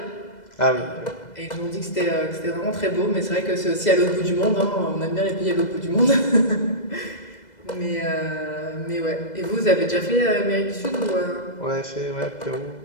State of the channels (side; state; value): right; late; 2.0 ms